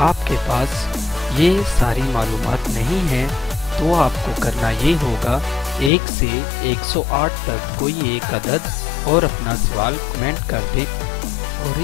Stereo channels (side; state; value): right; drops out; at 5.9 s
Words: पास ये सारी मालूमात नहीं है तो आपको करना ये होगा 1 से 108 तक कोई एक अदद और अपना सवाल कमेंट कर दें और